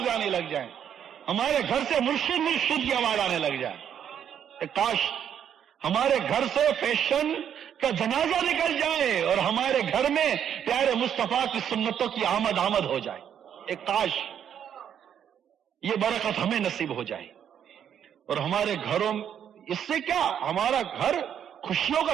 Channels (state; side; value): quieter; left; 9.0 dB